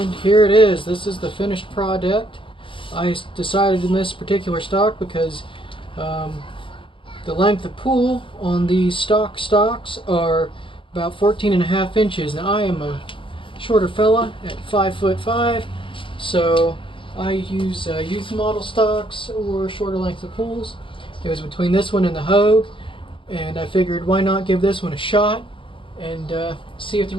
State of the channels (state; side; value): late; right; 0.25 ms